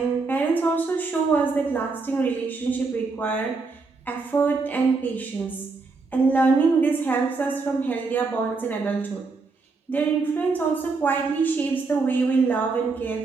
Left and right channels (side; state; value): left; quieter; 4.1 dB